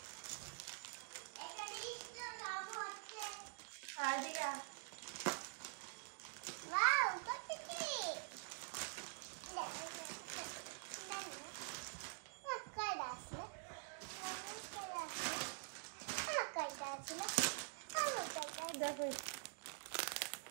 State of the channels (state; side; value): silent; left; digital silence